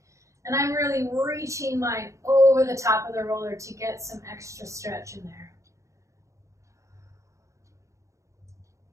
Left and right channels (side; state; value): left; late; 0.15 ms